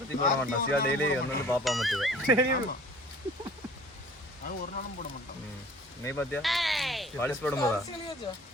சிவா டெய்லி வந்து பாப்பா மட்டும் ஒரு நாளும் போட மாட்டான். நீ பாத்தியா பாலிஷ் போடும்போதா?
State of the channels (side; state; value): both; normal; correlation 0.48